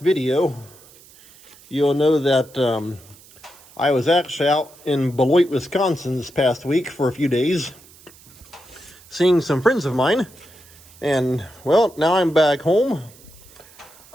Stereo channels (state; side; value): noise; right; hiss, 24 dB below the sound